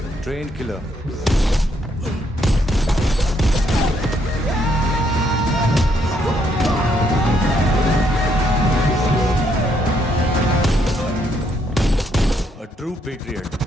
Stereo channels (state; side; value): normal; both; correlation 0.73